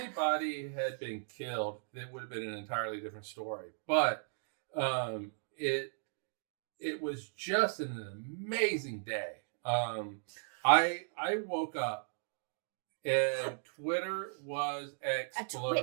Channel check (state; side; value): silent; left; digital silence